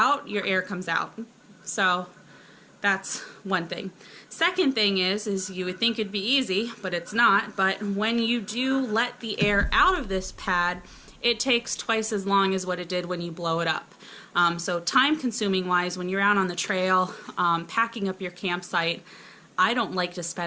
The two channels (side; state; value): both; identical; correlation 1.00